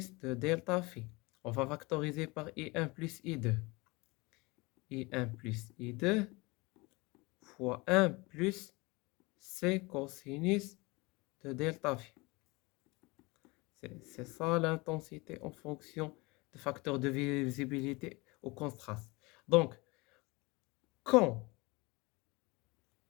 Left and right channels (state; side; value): quieter; right; 24.9 dB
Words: de delta phi. On va factoriser par I1 plus I2. I1 plus I2 fois 1 plus C cosinus de delta phi. C'est ça l'intensité en fonction de facteurs de visibilité au contraste. Donc, quand